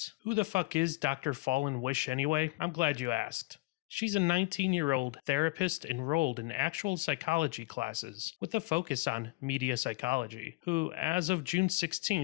Who the fuck is Dr. Fallen Wish anyway? I'm glad you asked. She's a 19-year-old therapist enrolled in actual psychology classes with a focus on media psychology, who, as of June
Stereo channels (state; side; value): quieter; right; 22.6 dB